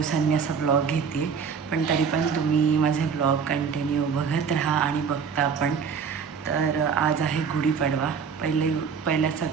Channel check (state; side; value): quieter; left; 6.3 dB